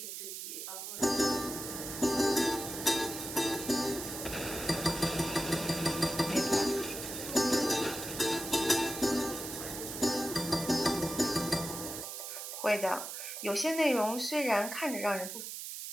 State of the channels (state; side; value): noise; right; hiss, 7 dB below the sound